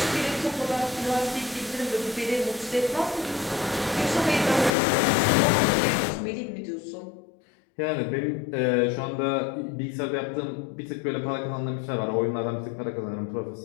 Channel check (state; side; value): drops out; right; at 4.7 s